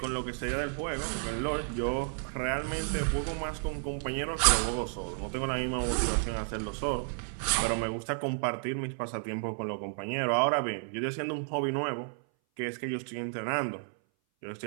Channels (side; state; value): left; silent; 57 dB below the other